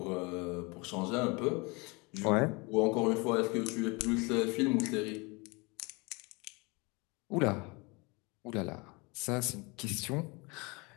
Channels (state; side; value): quieter; right; 27.8 dB